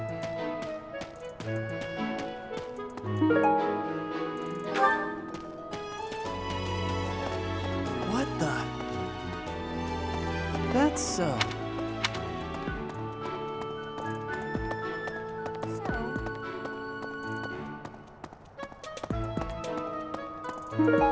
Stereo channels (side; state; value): both; identical; correlation 1.00